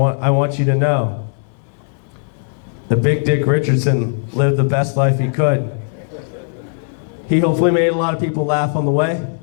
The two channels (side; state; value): right; silent; digital silence